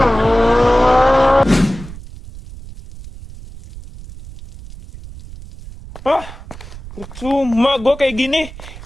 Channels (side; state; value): right; noise; rumble, 15 dB below the sound